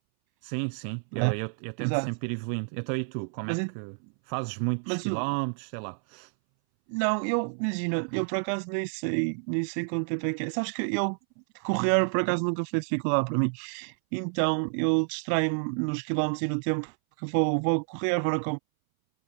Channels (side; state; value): left; silent; 59 dB below the other